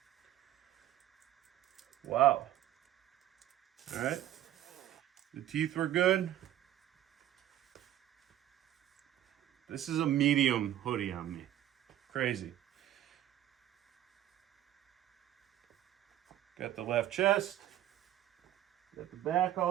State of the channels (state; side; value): quieter; left; 12.6 dB